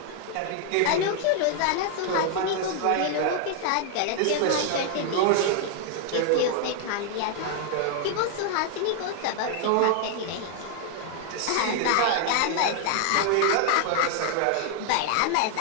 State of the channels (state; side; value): different; both; correlation 0.00